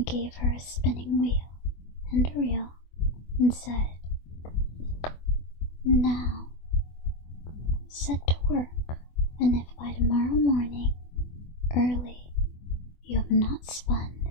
gave her a spinning wheel and a reel, and said, "Now set to work, and if by tomorrow morning early you have not spun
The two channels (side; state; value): right; late; 24 ms